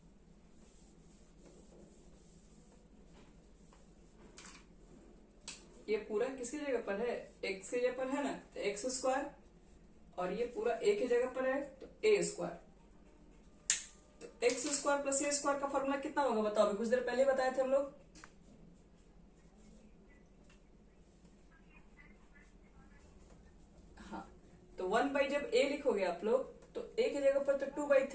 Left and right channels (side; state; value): both; identical; correlation 1.00